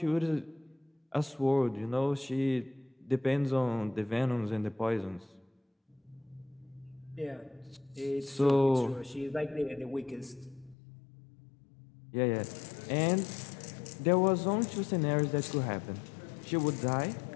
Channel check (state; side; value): drops out; right; at 10.8 s